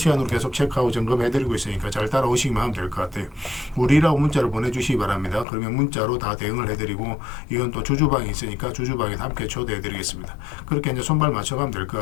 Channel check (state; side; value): drops out; right; at 5.5 s